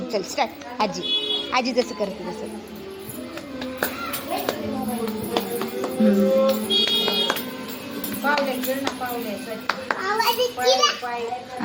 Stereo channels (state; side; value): identical; both; correlation 1.00